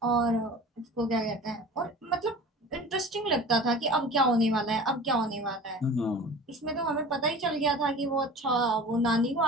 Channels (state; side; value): normal; both; correlation 0.39